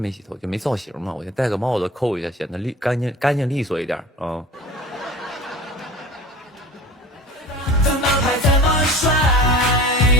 洗头，就没造型嘛，我就戴个帽子扣一下，显得干净利索一点啊。怎么拍怎么帅，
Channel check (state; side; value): normal; both; correlation 0.39